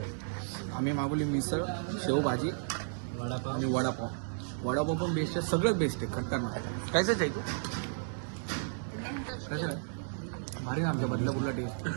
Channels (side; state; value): left; silent; digital silence